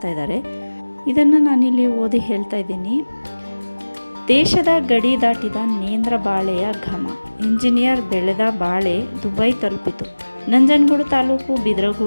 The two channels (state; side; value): inverted; both; correlation -1.00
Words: ಇದ್ದಾರೆ. ಇದನ್ನು ನಾನಿಲ್ಲಿ ಓದಿ ಹೇಳ್ತಾ ಇದ್ದೀನಿ. ದೇಶದ ಗಡಿ ದಾಟಿದ ನೇಂದ್ರ ಬಾಳೆಯ ಘಮ. ಇಂಜಿನಿಯರ್ ಬೆಳೆದ ಬಾಳೆ ದುಬೈ ತಲುಪಿತು. ನಂಜನಗೂಡು ತಾಲೂಕು